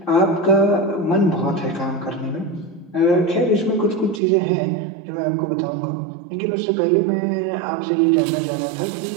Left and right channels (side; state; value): left; drops out; at 4.2 s